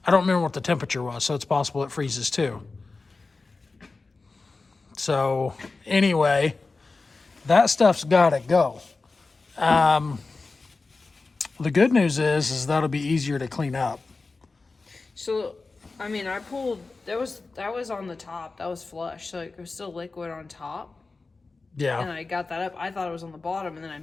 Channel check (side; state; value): right; quieter; 3.8 dB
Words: I don't remember what the temperature was, so it's possible it freezes too. So anyway, that stuff's got to go. The good news is that'll be easier to clean up. So, I mean, I pulled, that was on the top. That was flush, so it was still liquid on top. And Yeah, I got that up. I thought it was on the bottom, and then I